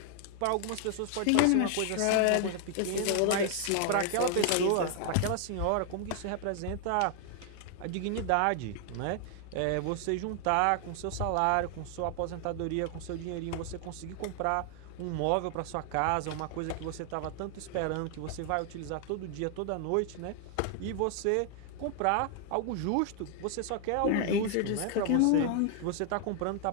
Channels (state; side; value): different; both; correlation 0.00